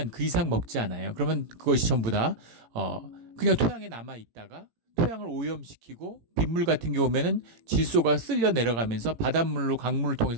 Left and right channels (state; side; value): late; left; 18 ms